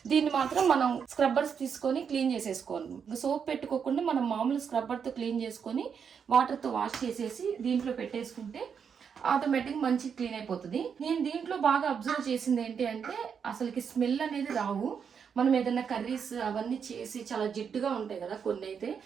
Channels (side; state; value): left; quieter; 6.9 dB